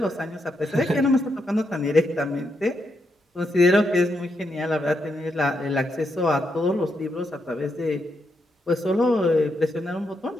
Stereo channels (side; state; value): both; normal; correlation 0.81